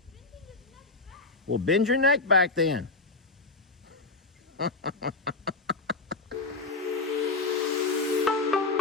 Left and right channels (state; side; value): quieter; right; 3.6 dB